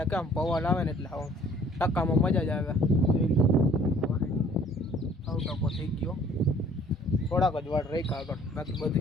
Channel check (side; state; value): both; normal; correlation 0.56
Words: કામ પવન આવે ને એટલે હાવ ટકામાં મજા જ આવે. જોઈ લ્યો, હાવ ટકો થઈ ગયો. થોડાક જ વાળ રાખ્યા આગળ, બાકી